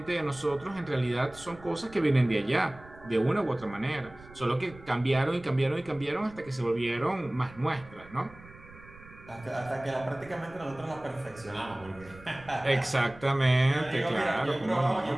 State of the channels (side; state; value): right; noise; rumble, 21 dB below the sound